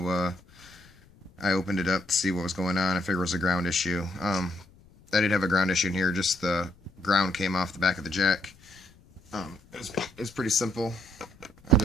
I opened it up to see what was going on. I figured it was a ground issue. I did have a ground issue in here, just the ground came off the back of the jack. It was pretty simple. I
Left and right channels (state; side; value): noise; left; rumble, 27 dB below the sound